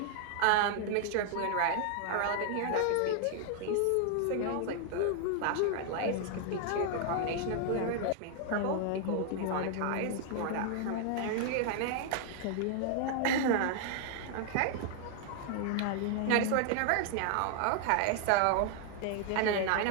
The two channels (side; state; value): both; different; correlation 0.00